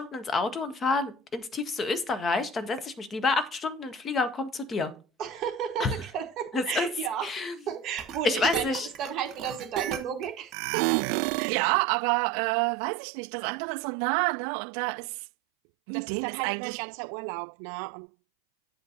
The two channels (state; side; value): drops out; left; at 10.6 s